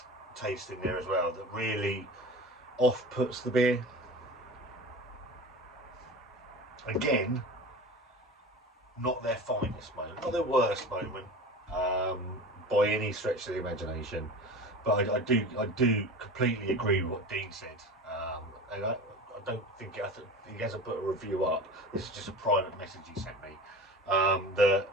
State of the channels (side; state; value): both; normal; correlation 0.34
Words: taste in there as well that really off-puts the beer. not their finest moment, not their worst moment, by any stretch of the imagination. But I do completely agree with what Dean said. And I don't think he hasn't put a review up. This is just a private message he sent me.